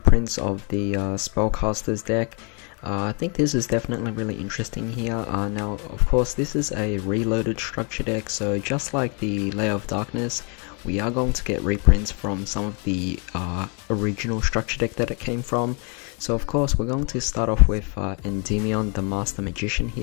of the Spellcaster's deck. I think this is definitely really interesting here. Now, of course, this is a reloaded structure deck, so just like the Layer of Darkness, we are going to get reprints from some of the original structure deck that it came from. So of course we're going to start off with Endymion, the Master Magician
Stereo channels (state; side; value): quieter; right; 35.4 dB